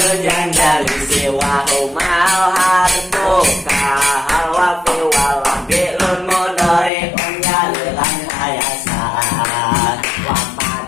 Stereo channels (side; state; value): right; drops out; at 6.9 s